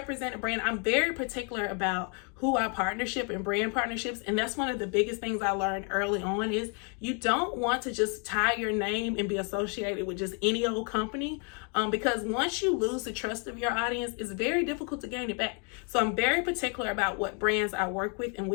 a brand, I'm very particular about who I partnership and brand partnerships. And that's one of the biggest things I learned early on is you don't want to just tie your name and be associated with just any old company, because once you lose the trust of your audience, it's very difficult to gain it back. So I'm very particular about what brands I work with and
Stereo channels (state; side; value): quieter; right; 38.5 dB